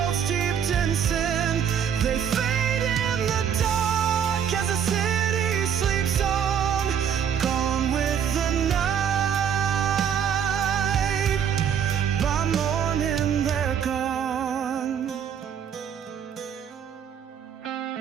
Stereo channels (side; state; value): left; quieter; 8.2 dB